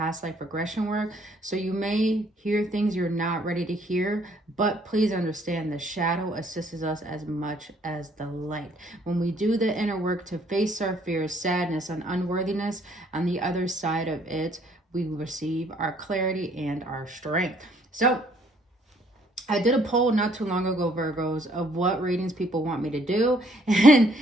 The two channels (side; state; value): both; normal; correlation 0.64